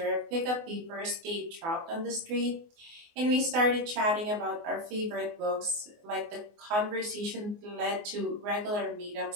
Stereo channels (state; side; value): late; left; 24 ms